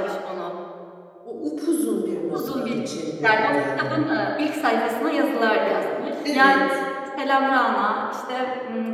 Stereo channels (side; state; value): both; identical; correlation 1.00